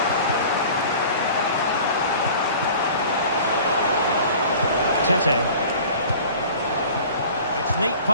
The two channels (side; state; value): both; inverted; correlation -0.44